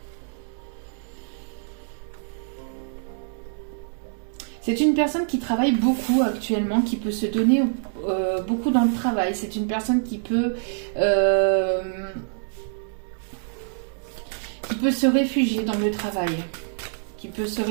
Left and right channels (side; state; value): left; silent; digital silence